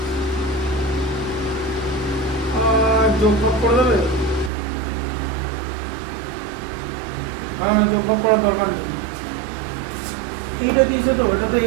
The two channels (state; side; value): drops out; left; at 4.5 s